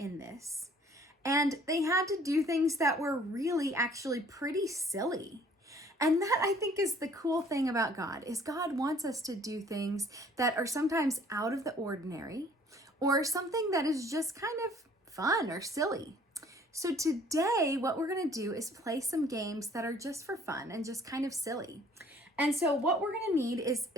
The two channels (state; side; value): normal; both; correlation 0.56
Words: this. And they had to do things that were really actually pretty silly. And that, I think, is the cool thing about God, is God wants us to do things that are sometimes out of the ordinary, or something that is just kind of fun or silly. So today, what we're going to do is play some games that are just for fun and just kind of silly. And so what we're going to need is